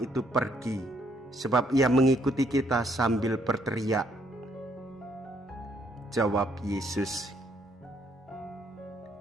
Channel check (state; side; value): normal; both; correlation 0.70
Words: pergi, sebab ia mengikuti kita," sambil berteriak. Jawab Yesus,